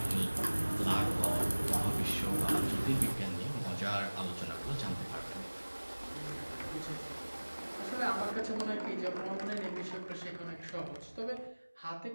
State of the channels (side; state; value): both; inverted; correlation -1.00